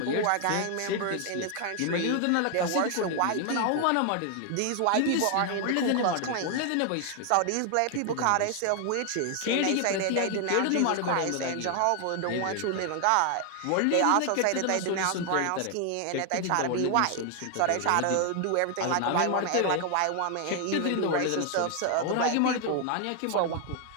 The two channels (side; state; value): both; different; correlation 0.00